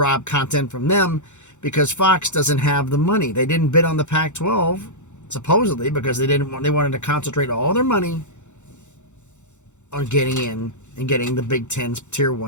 content from them, because Fox doesn't have the money. They didn't bid on the Pac-12, supposedly, because they wanted to concentrate all their money on getting in and getting the Big Ten's Tier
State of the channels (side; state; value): right; late; 0.84 ms